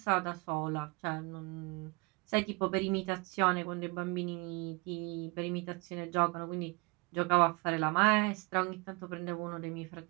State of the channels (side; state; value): left; quieter; 27.8 dB